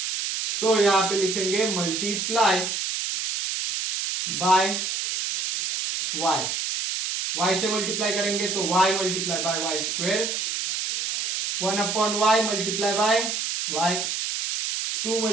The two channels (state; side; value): noise; right; hiss, 2 dB below the sound